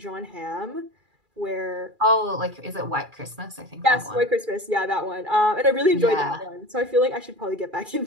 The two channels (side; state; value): left; late; 2.4 ms